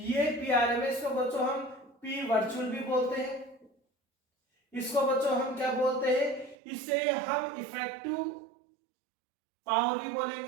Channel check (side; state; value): left; drops out; at 6.6 s